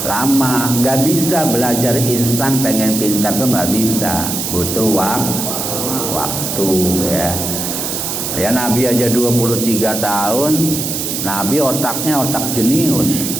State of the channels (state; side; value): noise; right; hiss, 3 dB below the sound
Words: Nggak bisa belajar instan pengen pintar tuh nggak bisa. Butuh waktu ya. Ya Nabi aja 23 tahun, Nabi otaknya otak jenius.